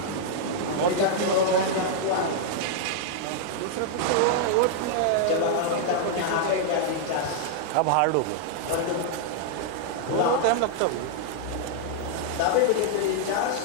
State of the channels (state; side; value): different; both; correlation -0.01